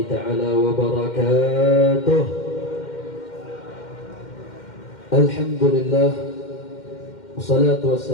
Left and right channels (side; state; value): right; late; 2.1 ms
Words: ta'ala wabarakatuh. Alhamdulillah, wassalatu